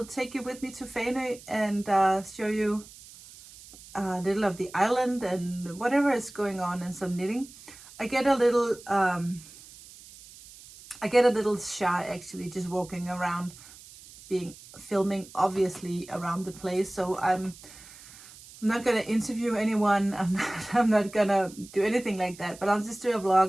take you with me to Fanø and show you a little of the island and whatever is going on, and some knitting. I get a little I get a little shy actually just walking around, filming obviously around the place. So I'm not gonna interview anyone. I'm not gonna do anything like that, but I'll just do a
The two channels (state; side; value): noise; right; hiss, 19 dB below the sound